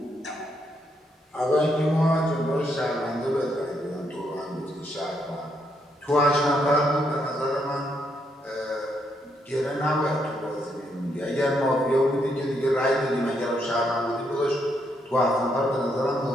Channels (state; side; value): normal; both; correlation 0.76